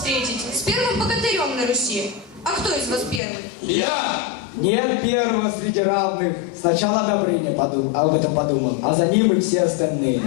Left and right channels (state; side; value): drops out; right; at 3.2 s